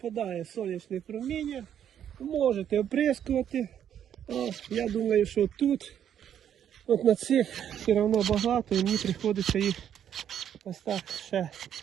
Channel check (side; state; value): left; quieter; 9.5 dB